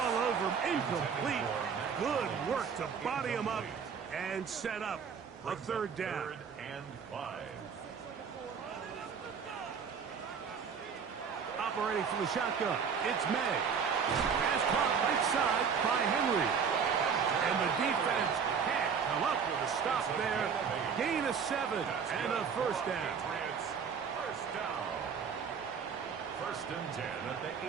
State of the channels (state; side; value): quieter; left; 6.5 dB